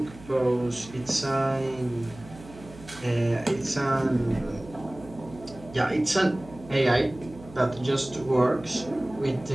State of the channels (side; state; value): right; noise; hum, 18 dB below the sound